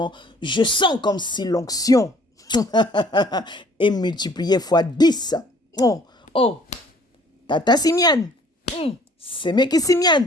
je sens comme si l'onction est multipliée fois 10. Oh, Tata Simian, c'est mec Simian,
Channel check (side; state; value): both; normal; correlation 0.56